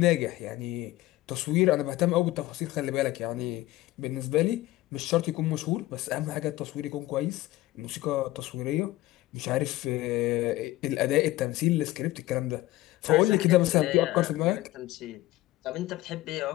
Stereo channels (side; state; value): right; quieter; 17.2 dB